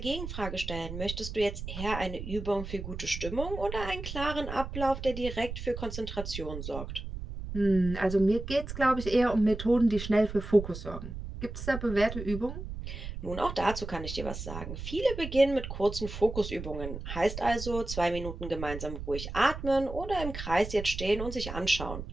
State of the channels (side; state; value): right; noise; rumble, 8 dB below the sound